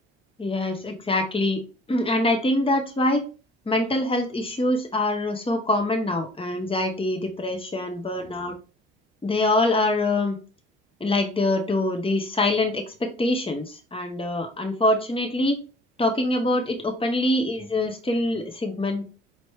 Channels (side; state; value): both; normal; correlation 0.51